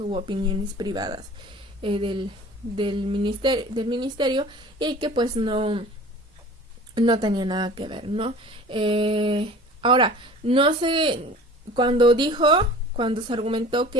opiniones privadas del ministerio, y que pues no tenía nada que ver, ¿no? Ahora, no sé, cuando se argumentó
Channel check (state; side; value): normal; both; correlation 0.43